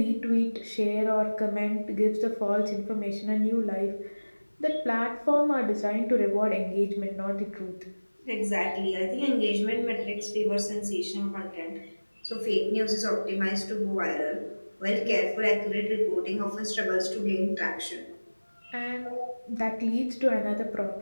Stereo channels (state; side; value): inverted; both; correlation -1.00